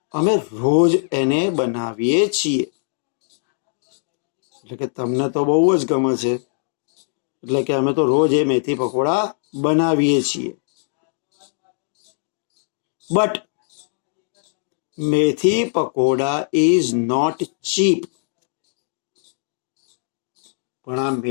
અમે રોજ એને બનાવીએ છીએ. એટલે કે તમને તો બહુ જ ગમે છે, એટલે કે અમે તો રોજ એ મેથી પકોડા બનાવીએ છીએ. બટ મેથી પકોડા ઇઝ નોટ ચીપ. પણ આ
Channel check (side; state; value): right; silent; 64 dB below the other